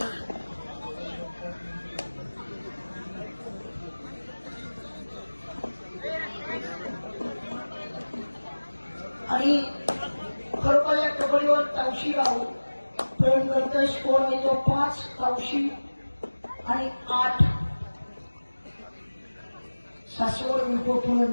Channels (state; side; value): inverted; both; correlation -1.00